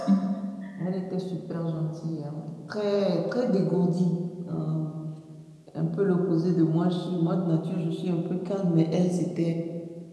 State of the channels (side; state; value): both; identical; correlation 1.00